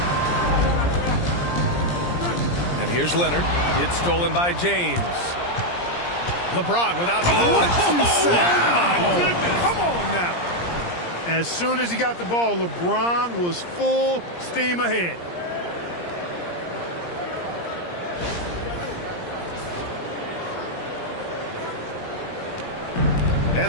And here's Leonard. It's stolen by James. LeBron without... What you say? Wow. Oh, my goodness. Come on now. As soon as he got the ball, LeBron was full steam ahead.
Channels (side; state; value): right; late; 17 ms